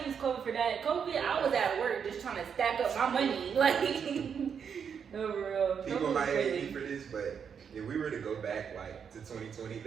used COVID for that. COVID, I was at work just trying to stack up my money. Like, no, for real. People might hate me for this, but if we were to go back like to 2020,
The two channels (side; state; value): left; quieter; 7.1 dB